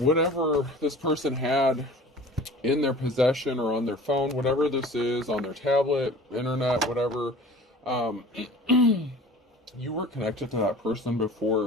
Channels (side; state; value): both; normal; correlation 0.43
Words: this person had in their possession or on their phone, whatever this is, on their tablet, internet, whatever, you were connected to that person